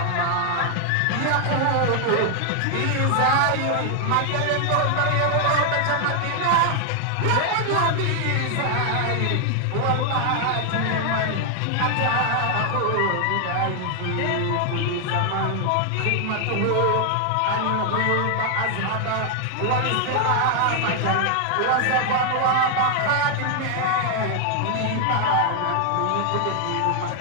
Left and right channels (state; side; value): different; both; correlation 0.00